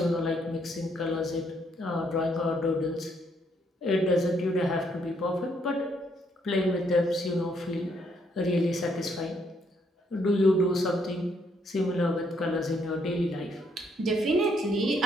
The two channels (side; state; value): both; normal; correlation 0.71